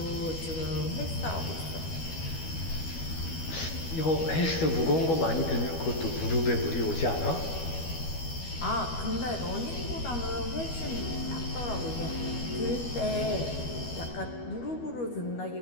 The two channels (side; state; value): right; late; 12 ms